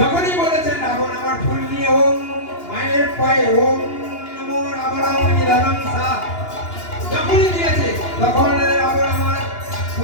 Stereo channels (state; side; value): late; right; 2.9 ms